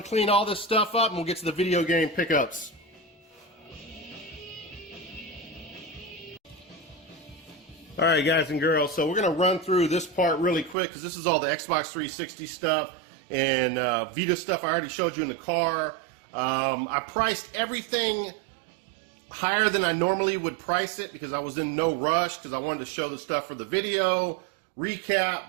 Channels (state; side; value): drops out; left; at 10.8 s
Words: to clean all this stuff up and we'll get to the video game pickups. All right, guys and girls, so we're going to run through this part really quick because this is all the Xbox 360 stuff and Vita stuff I already showed you in the car. I priced everything higher than I normally would price it because I was in no rush because I wanted to show the stuff for the video